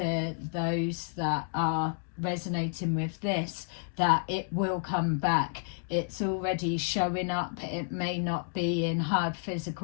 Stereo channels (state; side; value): silent; right; digital silence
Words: those that are resonating with this, that it will come back. It's already showing up. It may not be in hard